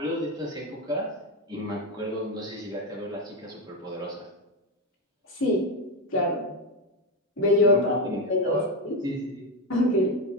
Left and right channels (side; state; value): both; normal; correlation 0.11